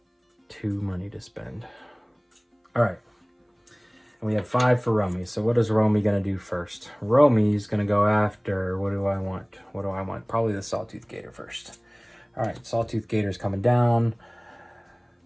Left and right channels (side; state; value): both; identical; correlation 1.00